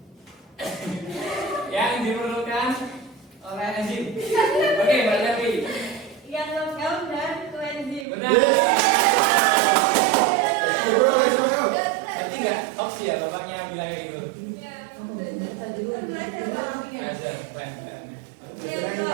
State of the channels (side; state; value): left; drops out; at 8.1 s